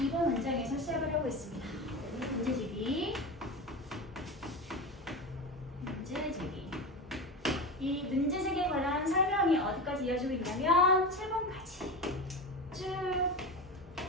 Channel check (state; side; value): normal; both; correlation 0.24